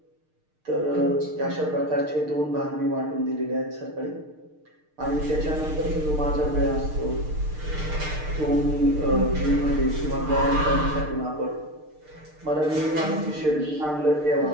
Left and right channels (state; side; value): late; left; 6.6 ms